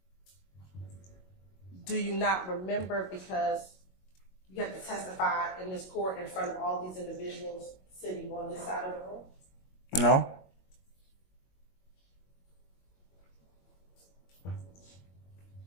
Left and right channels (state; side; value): late; right; 22 ms